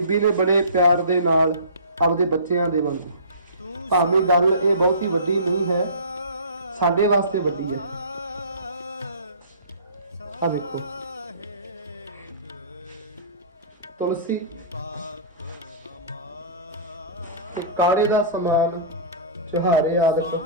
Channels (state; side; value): inverted; both; correlation -0.39